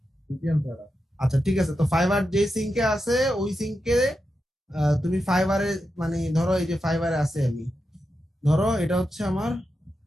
ভিপিএন ছাড়া। আচ্ছা ঠিক আছে, তো ফাইবার যে সিঙ্কে আছে ওই সিঙ্কে তুমি ফাইবারে, মানে ধরো এই যে ফাইবারে আছে, আমি ধরো এটা হচ্ছে আমার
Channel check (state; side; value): normal; both; correlation 0.88